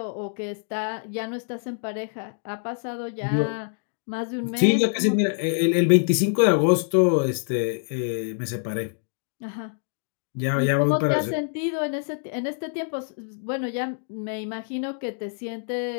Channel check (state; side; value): silent; right; digital silence